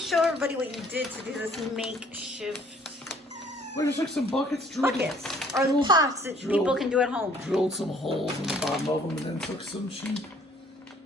everybody what you did to do this makeshift We just took some buckets, drilled, buckets or drilled- pots that people drilled- can do at home? drilled some holes in the bottom of them, and then took some cheap.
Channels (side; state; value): both; normal; correlation 0.59